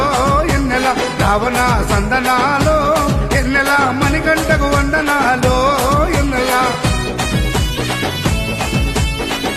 ఎన్నెల Ravana సందనాలో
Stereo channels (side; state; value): both; identical; correlation 1.00